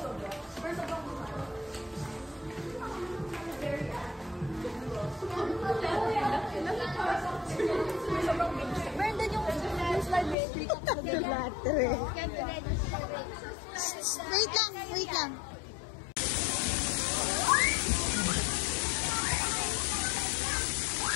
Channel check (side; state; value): right; drops out; at 10.4 s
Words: Brandon, yung slide rate. Wait lang, wait lang.